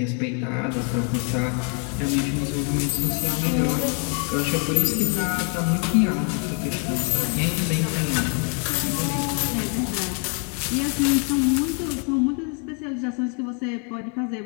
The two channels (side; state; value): right; quieter; 38.2 dB